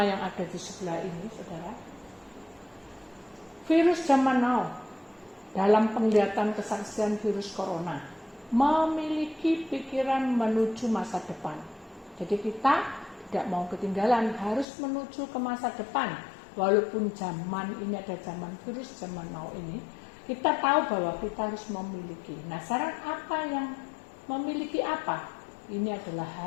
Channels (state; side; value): drops out; right; at 14.7 s